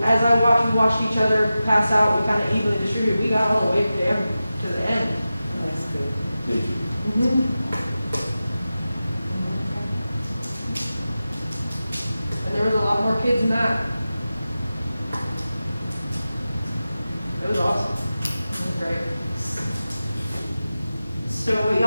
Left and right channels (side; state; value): both; inverted; correlation -0.94